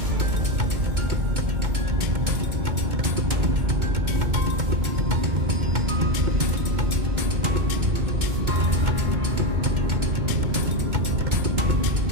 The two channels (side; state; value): left; late; 2.2 ms